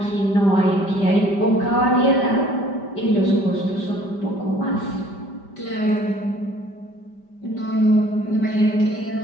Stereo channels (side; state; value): right; late; 5.1 ms